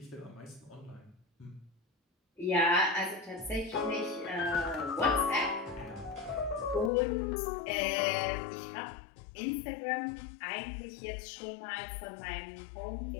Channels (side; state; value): right; drops out; at 6.9 s